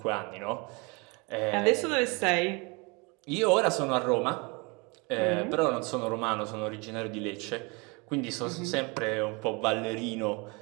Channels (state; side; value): quieter; left; 28.9 dB